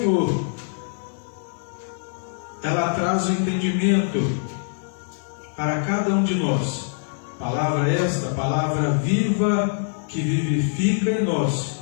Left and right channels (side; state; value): right; silent; 55 dB below the other